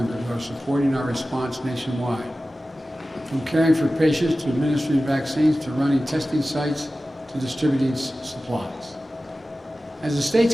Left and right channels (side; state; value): both; normal; correlation 0.95